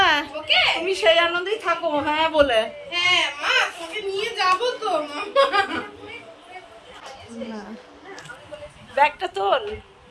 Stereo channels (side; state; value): both; identical; correlation 1.00